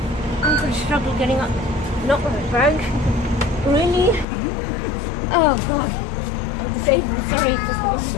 I'm gonna struggle getting up. Not with my bag. Really? Oh god. I'm disabled, sorry.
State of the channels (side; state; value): right; drops out; at 4.2 s